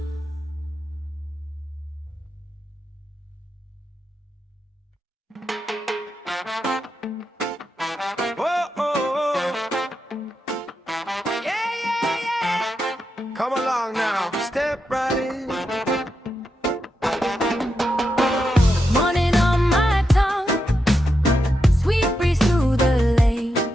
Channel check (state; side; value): normal; both; correlation 0.86